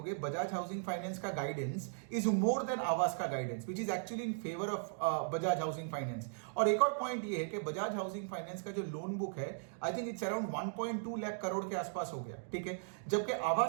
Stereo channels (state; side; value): silent; left; digital silence